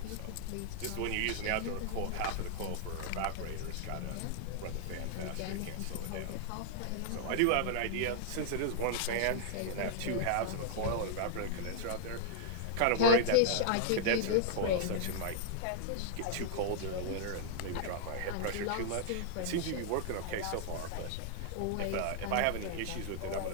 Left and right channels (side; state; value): both; different; correlation -0.01